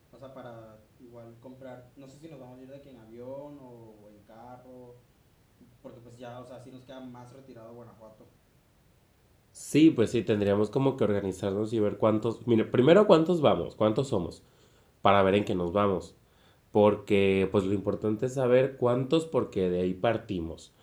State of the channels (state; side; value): identical; both; correlation 1.00